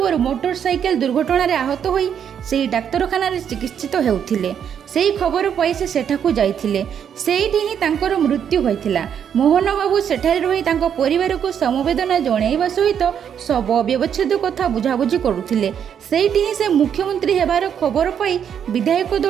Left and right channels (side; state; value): left; quieter; 8.4 dB